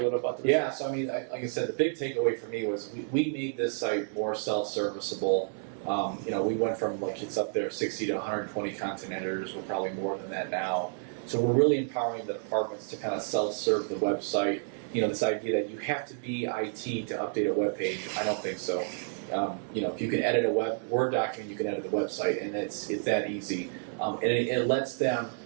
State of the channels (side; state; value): left; silent; 58 dB below the other